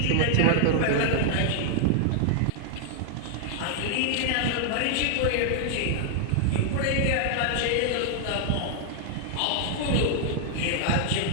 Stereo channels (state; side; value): different; both; correlation 0.00